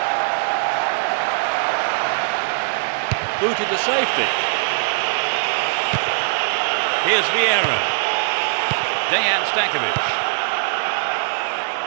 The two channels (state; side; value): silent; left; digital silence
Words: Booted to safety. Here's Vieira. Dejan Stankovic.